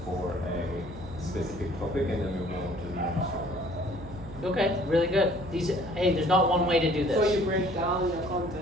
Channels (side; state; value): right; noise; hum, 16 dB below the sound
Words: for a specific topic and then we move on to the next topic. Okay, really good. Hey, there's not one way to do this. So you break down your